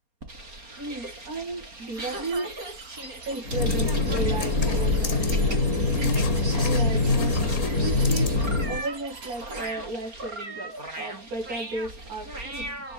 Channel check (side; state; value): left; late; 4.3 ms